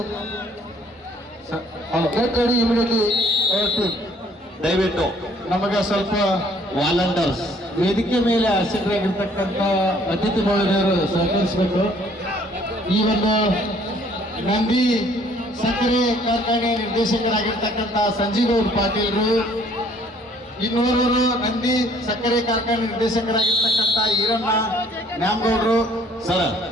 Get ready immediately. ದಯವಿಟ್ಟು ನಮಗೆ ಸ್ವಲ್ಪ ವಾಲಂಟರ್ಸ್ ವೇದಿಕೆ ಮೇಲೆ ಆಸಕ್ತರಾಗಿರ್ತಕ್ಕಂಥ ಅತಿಥಿ ಮಹಿಳೆಯರು ಸಹಕರಿಸಬೇಕು. ಈ ಒಂದು ನಂದಿ ಸಕ್ಕರೆ ಕಾರ್ಖಾನೆ ನಿರ್ದೇಶಕರಾಗಿರ್ತಕ್ಕಂಥ ಸಂಜೀವ್ ಪಾಟೀಲ್ರು, ಇನ್ನೋರ್ವರು ನಂದಿ ಸಕ್ಕರೆ ಕಾರ್ಖಾನೆ ನಿರ್ದೇಶಕರಾಗಿರ್ತಕ್ಕಂಥ ಈರಣ್ಣ ನ್ಯಾಮಗೌಡರು.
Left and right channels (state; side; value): normal; both; correlation 0.60